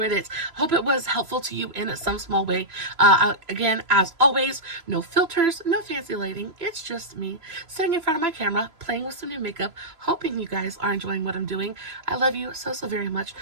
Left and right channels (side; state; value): left; late; 3.0 ms